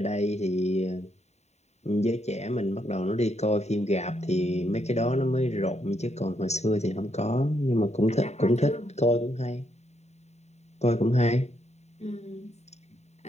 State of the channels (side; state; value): right; late; 0.32 ms